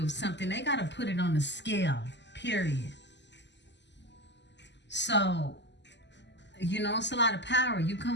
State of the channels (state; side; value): late; right; 0.51 ms